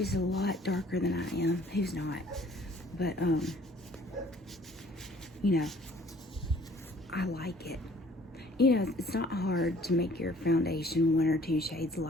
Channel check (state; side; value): normal; both; correlation 0.56